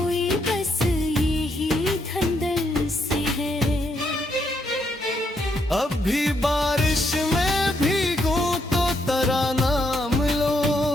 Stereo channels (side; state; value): both; normal; correlation 0.77